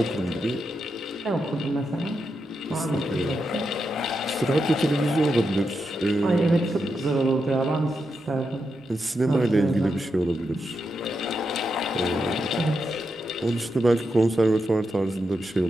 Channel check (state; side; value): normal; both; correlation 0.85